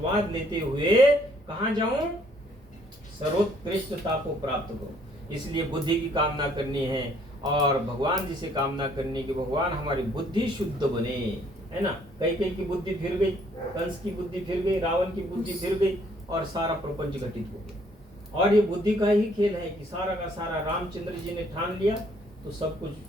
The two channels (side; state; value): both; normal; correlation 0.64